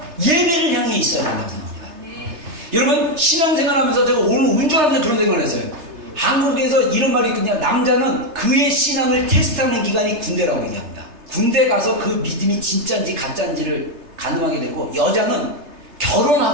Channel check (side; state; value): left; late; 3.3 ms